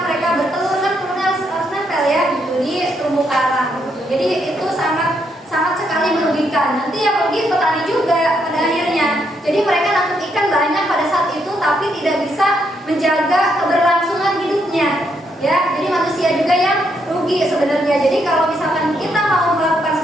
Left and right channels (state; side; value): normal; both; correlation 0.76